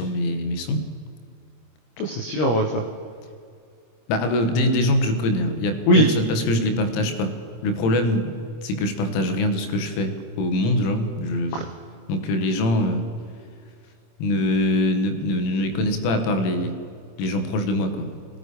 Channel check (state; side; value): late; right; 26 ms